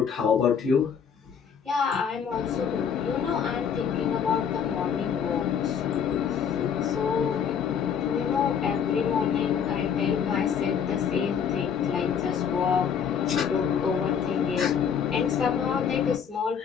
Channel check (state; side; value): quieter; right; 7.4 dB